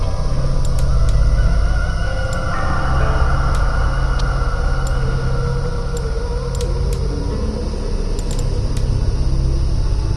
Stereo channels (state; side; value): identical; both; correlation 1.00